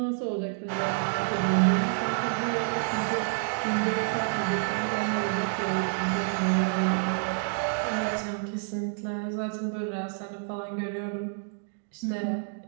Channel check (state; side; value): silent; left; 58 dB below the other